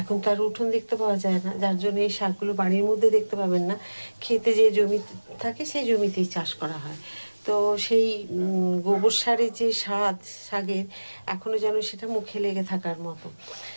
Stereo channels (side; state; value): both; inverted; correlation -1.00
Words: তার উঠোন দেখতে পাওয়া যায় না, যার জন্য এই শাকগুলো বাড়ির মধ্যে দেখতে পাবেন না। খেতে যে জমি থাকে সেই জমিতেই চাষ করা হয়। তো সেই গোবর সারের যে স্বাদ শাকের, এখনও যেন সেটা মুখে লেগে থাকার মতো।